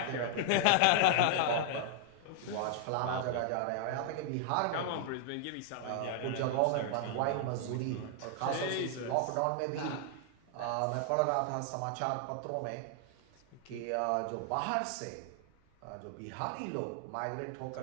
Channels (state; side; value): different; both; correlation 0.00